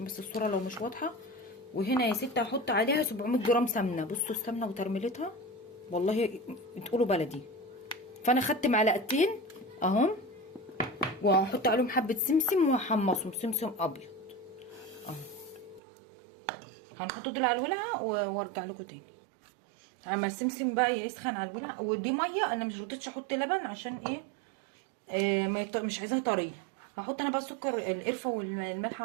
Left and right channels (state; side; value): drops out; left; at 15.8 s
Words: بس الصوره لو مش واضحه. وهنا يا ستة هحط عليها 700 جرام سمنه. بصوا السمنه وترميلتها والله تقولوا بلدي. فانا خدت معلقتين اهم، وهحط عليهم حبه سمسم وهحمصهم سمسم ابيض اهو. هنحط دول على الولعه وارجع لكم تاني. اما السمسم بقى يسخن على الولعه. ودي ميه، انا مش رضيتش احط لبن عشان ايه، مش عايزاها طريه. هحط انا بقى السكر القرفه والملح